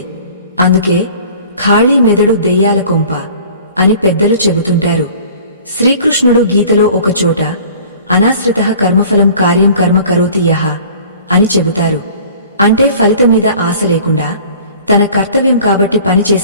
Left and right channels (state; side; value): inverted; both; correlation -0.47